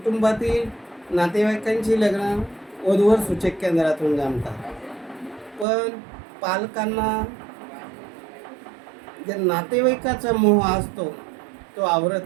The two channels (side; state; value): left; drops out; at 5.7 s